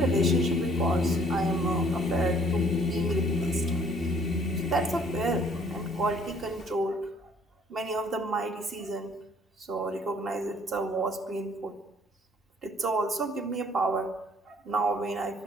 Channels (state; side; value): normal; both; correlation 0.59